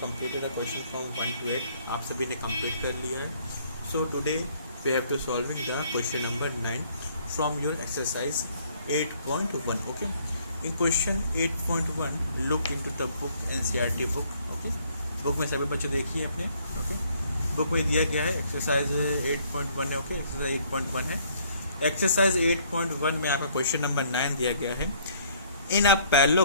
the question from 1 to 8. आप सभी ने complete कर लिया है. So today we have to solving the question number 9 from your exercise 8.1. Okay. In question 8.1 look into the book NCERT book. Okay. Book में सभी बच्चे देखिए अपने. ओके बुक में दिया गया है एक्सरसाइज 8.1 है. ओके एक्सरसाइज 8.1 है. एक्सरसाइज 8.1 में आपका क्वेश्चन नंबर 9 दिया गया है. इन अ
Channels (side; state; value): both; inverted; correlation -0.63